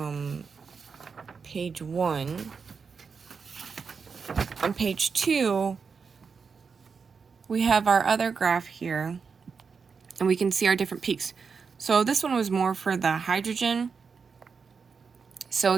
page 1. On page 2, we have our other graph here, and we can see our different peaks. So this one was more for the hydrogen. So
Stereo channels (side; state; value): left; quieter; 5.5 dB